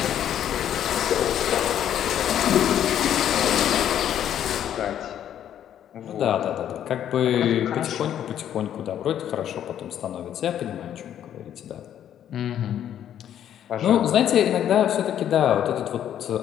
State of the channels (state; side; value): quieter; right; 10.3 dB